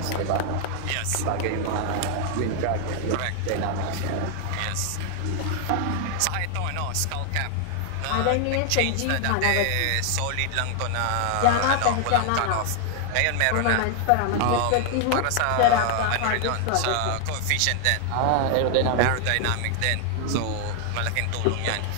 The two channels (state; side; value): different; both; correlation 0.00